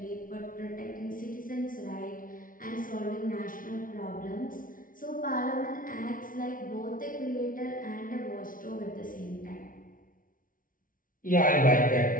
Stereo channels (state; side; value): late; right; 0.39 ms